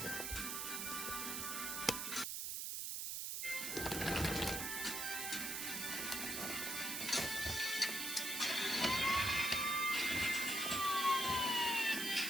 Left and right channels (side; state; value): right; noise; hiss, 2 dB below the sound